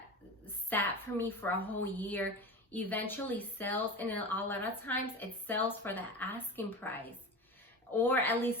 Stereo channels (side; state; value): both; normal; correlation 0.28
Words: sat for me for a whole year eventually sells, and a lot of times it sells for the asking price, or at